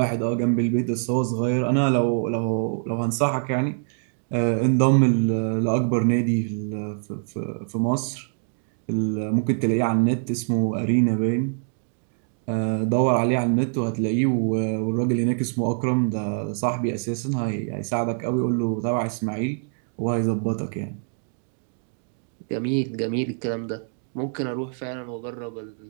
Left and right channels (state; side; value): silent; left; digital silence